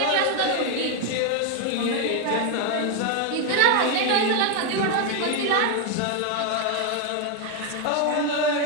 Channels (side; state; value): both; different; correlation 0.01